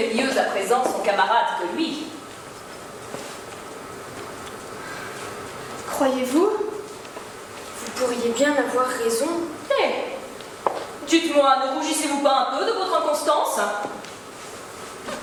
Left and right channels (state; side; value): identical; both; correlation 1.00